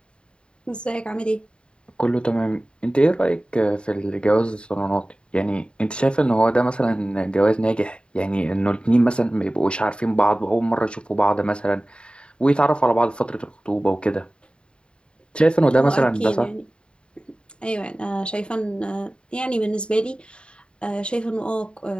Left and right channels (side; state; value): right; late; 0.053 ms